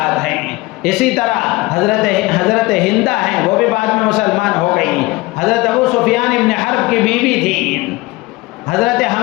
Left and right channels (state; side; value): quieter; right; 21.6 dB